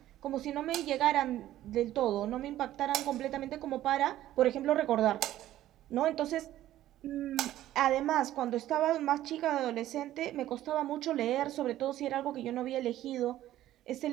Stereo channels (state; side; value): quieter; left; 13.7 dB